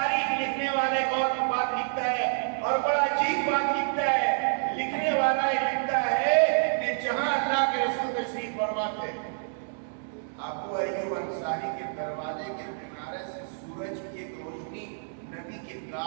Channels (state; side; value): silent; left; digital silence